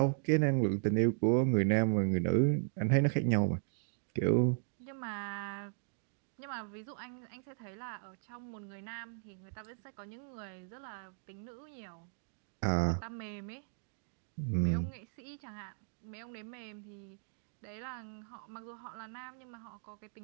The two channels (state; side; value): silent; left; digital silence